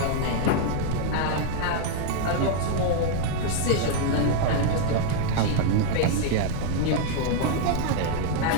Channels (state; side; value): different; both; correlation -0.01